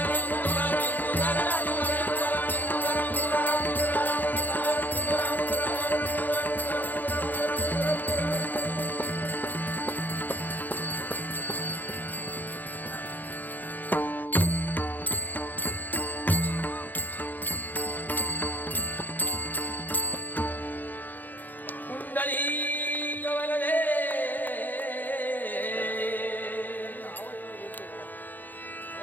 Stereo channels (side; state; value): right; late; 0.086 ms